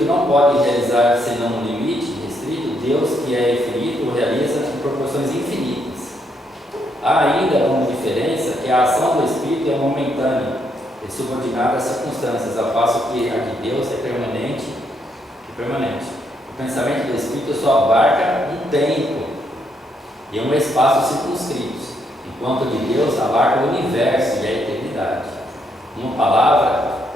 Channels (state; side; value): normal; both; correlation 0.75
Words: não pode realizar senão no limite restrito, Deus, que é infinito, o realiza em proporções infinitas. Há ainda uma diferença que a ação do Espírito é momentânea e subordinada às circunstâncias, ao passo que a de Deus é permanente e permanente. O pensamento do Espírito só abarca um tempo e um espaço circunscritos, enquanto o de Deus abarca o universo e a eternidade. Uma palavra,